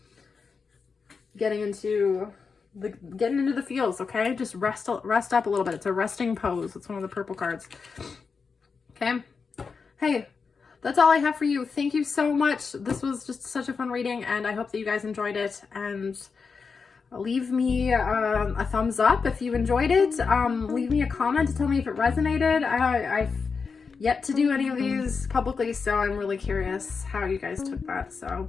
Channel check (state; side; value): quieter; right; 5.2 dB